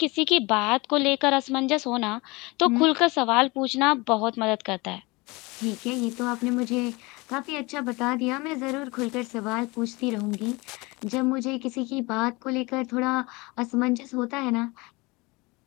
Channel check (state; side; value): quieter; right; 24.6 dB